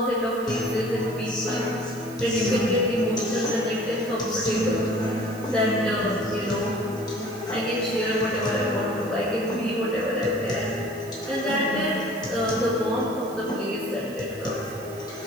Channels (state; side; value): noise; right; hiss, 20 dB below the sound